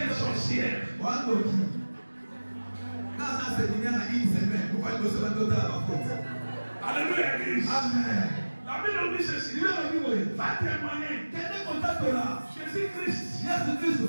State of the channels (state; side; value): inverted; both; correlation -1.00